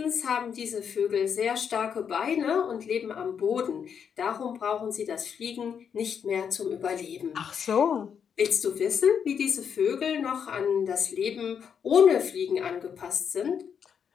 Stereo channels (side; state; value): right; quieter; 7.4 dB